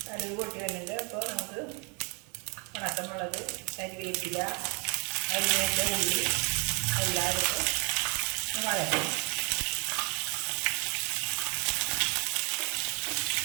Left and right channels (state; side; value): quieter; left; 34.0 dB